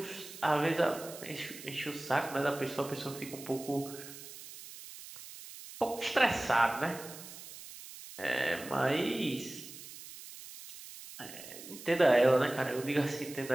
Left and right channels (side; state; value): right; noise; hiss, 14 dB below the sound